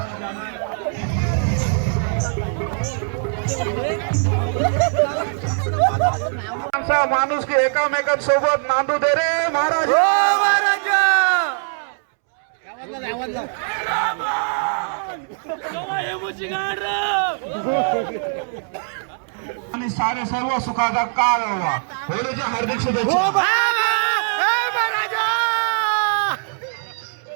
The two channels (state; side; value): silent; left; 65 dB below the other